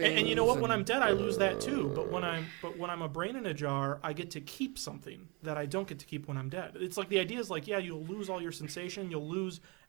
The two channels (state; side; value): quieter; left; 29.6 dB